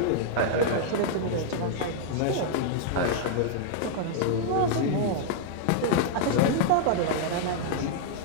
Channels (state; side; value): different; both; correlation -0.01